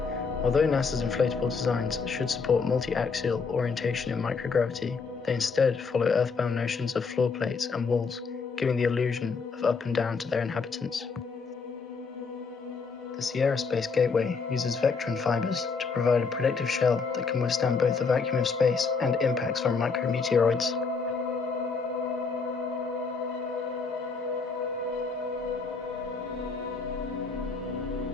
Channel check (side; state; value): right; quieter; 4.9 dB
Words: Although NASA's inflatable designs should support multi-axial orientation in microgravity, they instead follow earthbound notions of floor plates and walls, giving the illusion of up and down to their inhabitants. The Sierra Space Gateway uses Vectron fibers to provide a protective shell that can withstand both the vacuum of space and impacts from micrometeoroids.